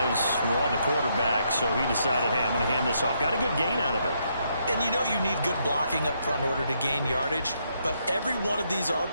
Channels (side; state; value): both; inverted; correlation -0.75